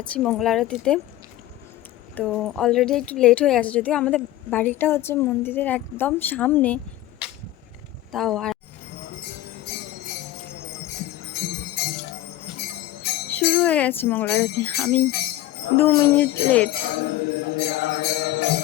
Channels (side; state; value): right; quieter; 14.9 dB